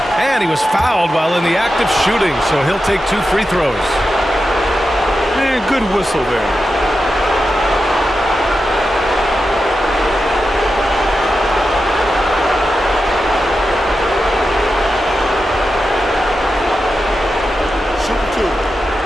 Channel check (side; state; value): both; normal; correlation 0.90